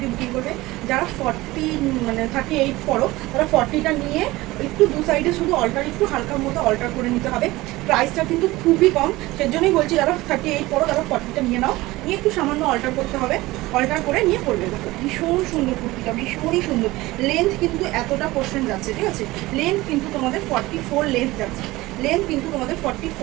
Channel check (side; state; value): left; quieter; 19.4 dB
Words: বুকিং করবে। যারা 38 পড়ো তারা 40টা নিয়ে একটু দু সাইডে শুধু অল্টার, একটু হালকার মতো অল্টার করে নিতে হবে। প্রাইসটা কিন্তু খুবই কম, সেজন্যই বলছি যারা 38 পড়ো তারা 40টা নিয়ে নাও, নিয়ে একটু সামান্য অল্টার করতে হবে, অল্টার করে নিয়ে পড়বে। দেখো ভীষণ সুন্দর কুর্তিটা, ভীষণই সুন্দর। লেন্থ কিন্তু এতটা পোর্শন যাচ্ছে, ঠিক আছে? লেন্থ কিন্তু তোমাদের 44 লেন্থ যাচ্ছে,